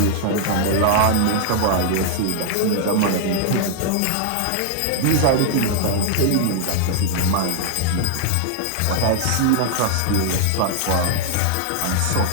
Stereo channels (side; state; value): both; different; correlation 0.00